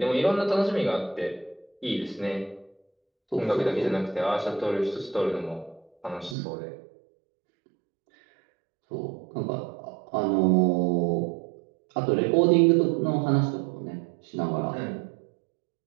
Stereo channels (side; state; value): left; drops out; at 6.4 s